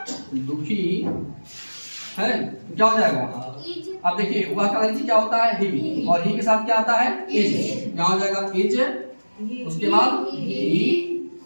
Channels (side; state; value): both; inverted; correlation -1.00